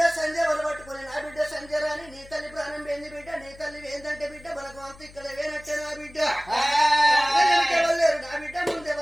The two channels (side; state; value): left; noise; hum, 21 dB below the sound